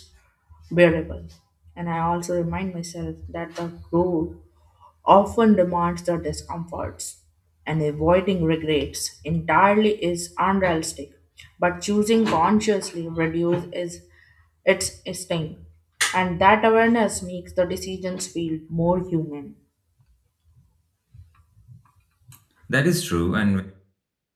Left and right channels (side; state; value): both; identical; correlation 1.00